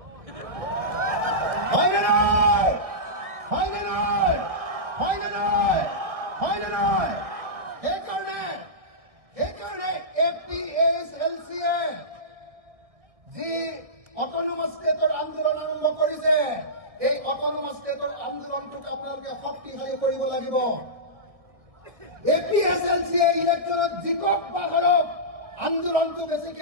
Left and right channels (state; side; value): late; left; 1.6 ms